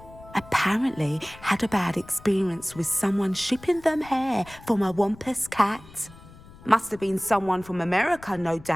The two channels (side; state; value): left; noise; rumble, 21 dB below the sound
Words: Apparently had a bad experience with someone shipping them hair from a Wampus cat. Must have been someone from America, no